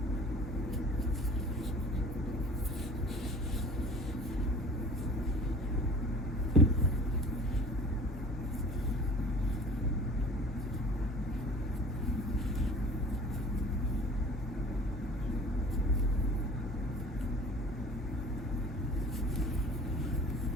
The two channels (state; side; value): normal; both; correlation 0.45